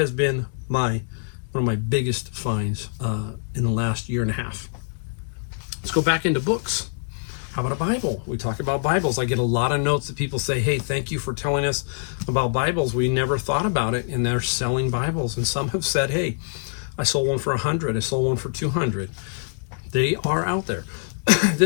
been one of my biggest finds in the last year and a half. Let's go back into books. How about a Bible? We talk about Bibles. I get a lot of notes that people say, hey, thank you for telling us about Bibles. We never thought about it, and they're selling Bibles. And some have said, hey, I sold one for $100. I sold one for $200. They are out there.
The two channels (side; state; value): right; silent; digital silence